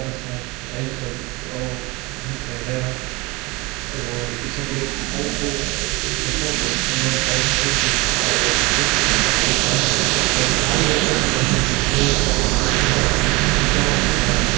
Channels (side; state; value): left; quieter; 24.4 dB